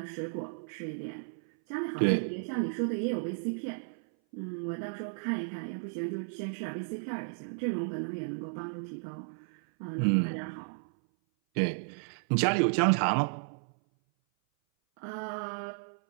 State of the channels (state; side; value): silent; left; 56 dB below the other